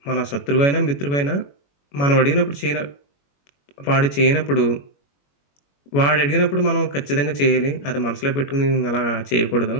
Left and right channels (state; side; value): late; right; 21 ms